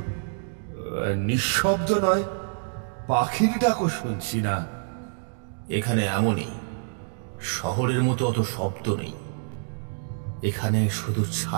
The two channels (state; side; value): silent; left; digital silence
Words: নিঃশব্দ নয়? পাখির ডাকও শুনছি না। এখানে এমনই, শহরের মতো অত শব্দ নেই। এখানে শুধু